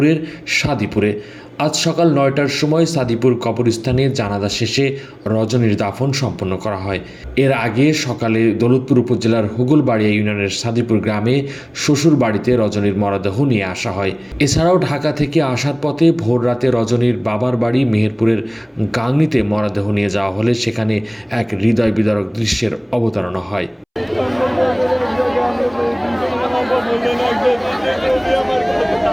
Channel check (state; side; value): identical; both; correlation 1.00